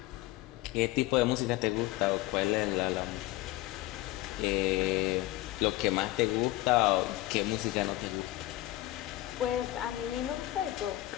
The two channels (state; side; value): quieter; right; 17.1 dB